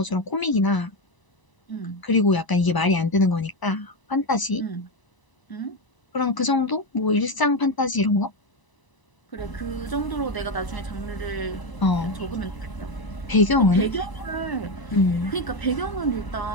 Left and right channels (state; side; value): late; right; 1.0 ms